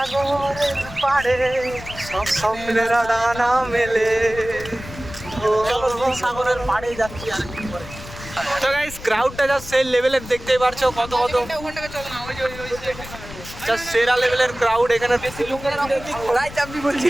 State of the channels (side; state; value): left; noise; rumble, 14 dB below the sound